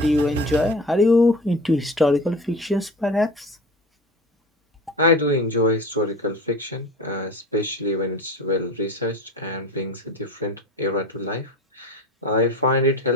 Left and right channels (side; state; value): both; normal; correlation 0.34